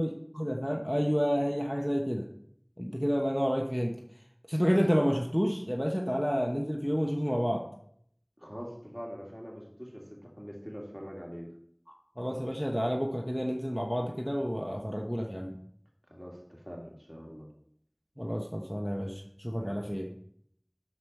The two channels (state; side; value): identical; both; correlation 1.00